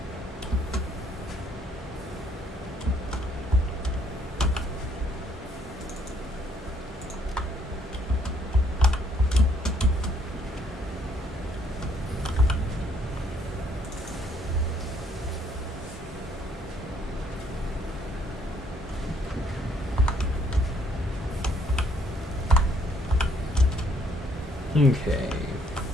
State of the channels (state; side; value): normal; both; correlation 0.66